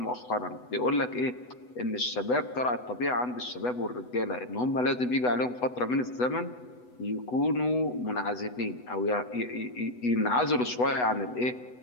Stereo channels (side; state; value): right; late; 8.1 ms